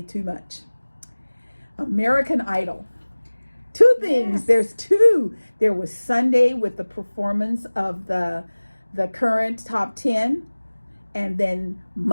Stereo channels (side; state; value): both; inverted; correlation -1.00